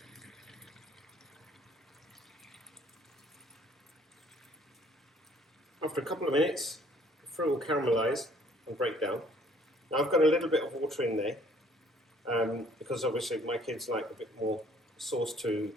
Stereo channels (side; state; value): both; normal; correlation 0.59